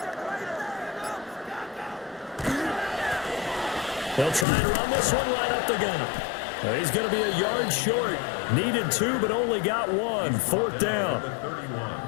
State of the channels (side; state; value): right; drops out; at 4.5 s